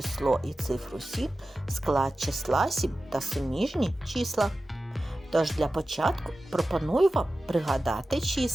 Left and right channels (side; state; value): both; normal; correlation 0.94